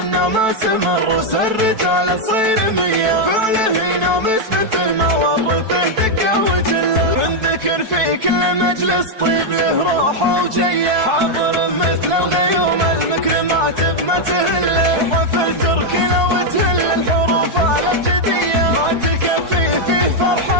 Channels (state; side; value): late; left; 4.6 ms